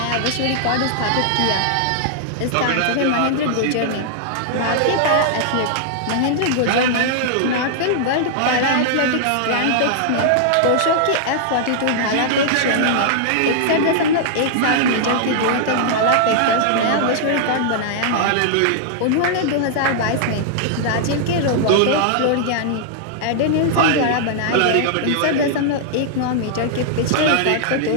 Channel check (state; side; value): different; both; correlation -0.01